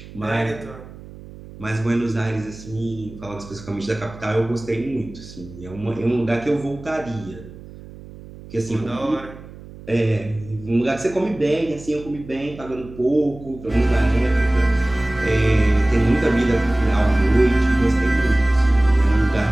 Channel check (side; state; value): right; noise; hum, 17 dB below the sound